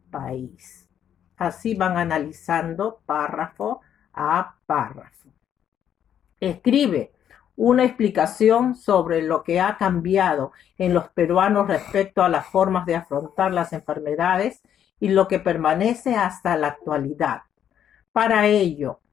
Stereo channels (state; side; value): quieter; right; 9.6 dB